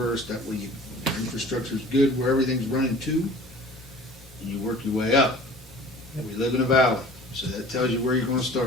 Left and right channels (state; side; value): normal; both; correlation 0.45